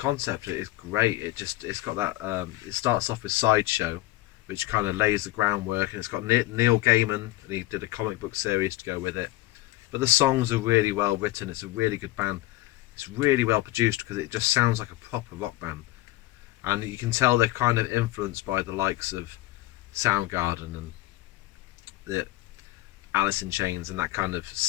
is great. It's got that. It starts off with Sideshow, which kind of lays the groundwork, and it's got Neil Gaiman, and he did a comic book series to go with it. but the songs are really well written. It's a really good band. It's really well produced because it just sounds like a proper rock band, and you can tell they're kind of influenced by the likes of Soundgarden and the Alice in Chains and that kind of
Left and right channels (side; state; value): right; quieter; 17.6 dB